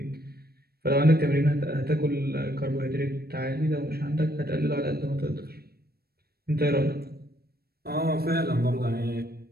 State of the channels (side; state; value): left; late; 0.45 ms